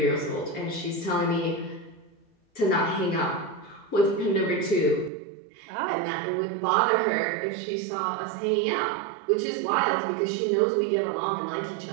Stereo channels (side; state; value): left; drops out; at 5.1 s